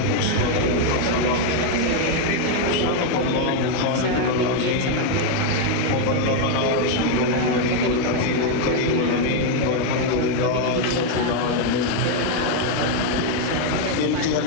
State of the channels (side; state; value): both; different; correlation 0.01